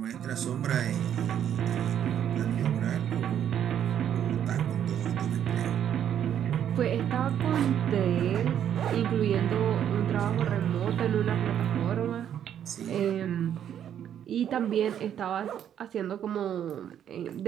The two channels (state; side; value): quieter; left; 9.7 dB